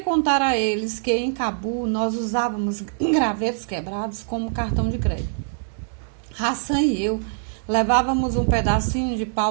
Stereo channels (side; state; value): left; silent; digital silence